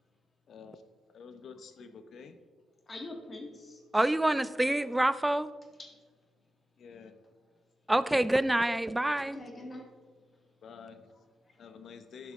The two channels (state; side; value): normal; both; correlation 0.98